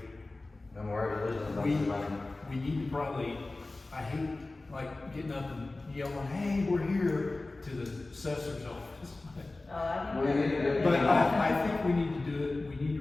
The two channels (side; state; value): right; quieter; 3.1 dB